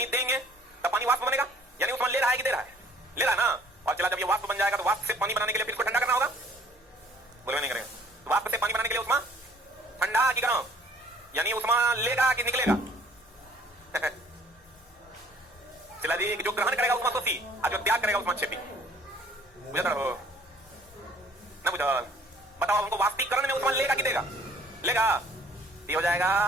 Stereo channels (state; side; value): normal; both; correlation 0.56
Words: देंगे तब पानी वाष्प बनेगा, यानी ऊष्मा ले रहा है कि दे रहा है? ले रहा है ना। और चला जब ये वाष्प बन जाएगा तो वाष्प से पानी बनाने के लिए फिर इसको ठंडा करना होगा, बोले नहीं करेगा। तो वाष्प से पानी बनाने के लिए ऊष्मा ठंडा कि गर्म, यानी ऊष्मा लेगा कि निकलेगा? चला जी, जो ग्रहण करेगा ऊष्माशोषी और जो त्याग करेगा ऊष्माक्षेपी। बुझा हो ना? बुझा? बताओ हमको, वाष्पीकरण में ऊष्मा लेगा कि देगा? लेगा। ये हो जाएगा